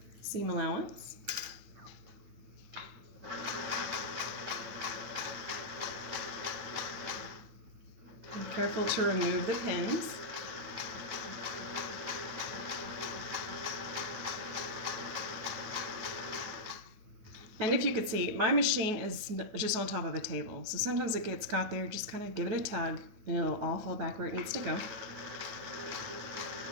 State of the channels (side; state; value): left; late; 9.2 ms